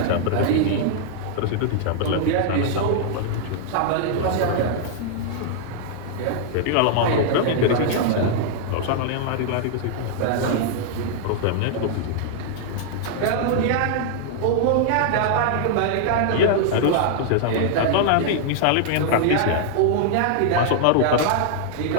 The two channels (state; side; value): different; both; correlation 0.00